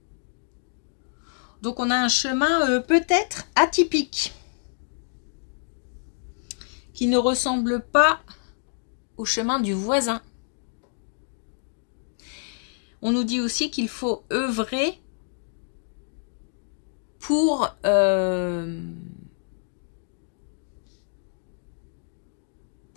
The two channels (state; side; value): silent; right; digital silence